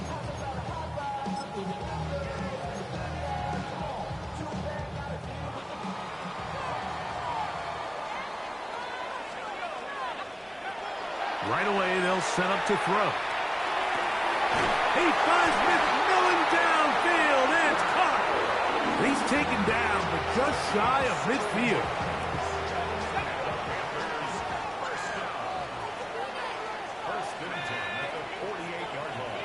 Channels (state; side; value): identical; both; correlation 1.00